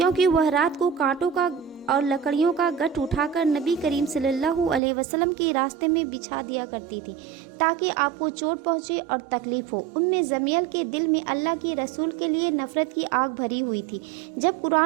वह रात को कांटों का और लकड़ियों का गठ उठाकर नबी करीम सल्लल्लाहु अलैहि वसल्लम के रास्ते में बिछा दिया करती थी, ताकि आपको चोट पहुंचे और तकलीफ हो। उम्मे जमील के दिल में अल्लाह के रसूल के लिए नफरत की आग भरी हुई थी। जब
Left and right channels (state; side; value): drops out; left; at 4.8 s